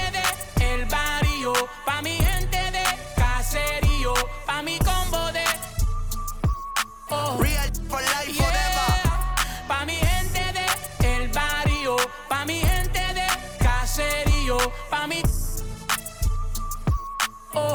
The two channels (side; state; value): both; identical; correlation 1.00